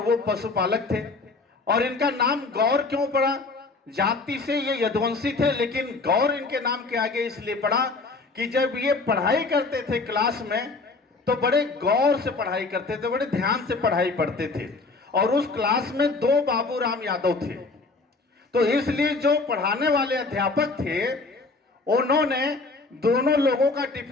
वो पशुपालक थे। और इनका नाम गौर क्यों पड़ा? जाति से ये यदुवंशी थे, लेकिन गौर इनके नाम के आगे इसलिए पड़ा कि जब ये पढ़ाई करते थे क्लास में तो बड़े गौर से पढ़ाई करते थे, बड़े ध्यान से पढ़ाई पढ़ते थे। और उस क्लास में 2 बाबूराम यादव थे, तो इसलिए जो पढ़ाने वाले अध्यापक थे उन्होंने दोनों लोगों का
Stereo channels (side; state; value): right; quieter; 3.8 dB